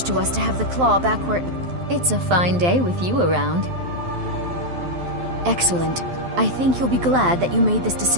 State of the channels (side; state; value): left; late; 12 ms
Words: to us to have the claw back where... It's a fine day with you around. Excellent. I think you'll be glad that you made this